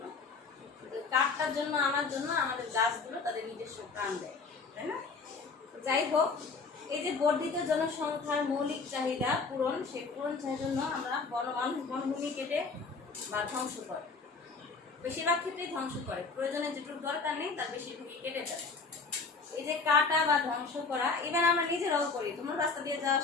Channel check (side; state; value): right; quieter; 4.5 dB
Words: কাঠটার জন্য আমাদের গাছগুলো তাদের নিজস্ব প্রাণ দেয়, তাই না? যাই হোক, এই যে বর্ধিত জনসংখ্যার মৌলিক চাহিদা পূরণ, সেই পূরণ চাহিদার জন্য আমরা বনভূমি কেটে বা ধ্বংস করে, বেশিরভাগ ক্ষেত্রেই ধ্বংস করে। প্রয়োজনে যেটুকু দরকার নেই তার বেশিরভাগই কেটে দেয়। এই যে কাটা বা ধ্বংস করা, ইভেন আমরা নিজেরাও করি। তোমার রাস্তা দিয়ে যাওয়ার